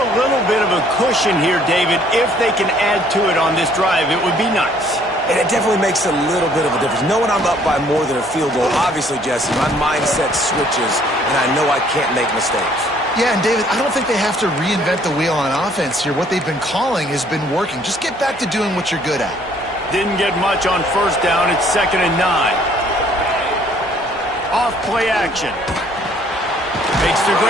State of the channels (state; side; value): noise; right; hum, 25 dB below the sound